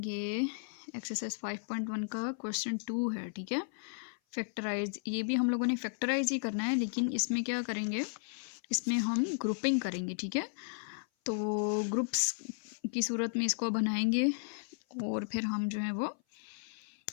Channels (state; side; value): silent; right; 55 dB below the other